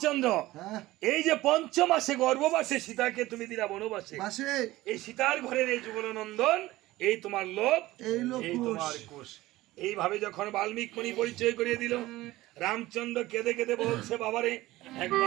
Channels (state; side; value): quieter; left; 17.6 dB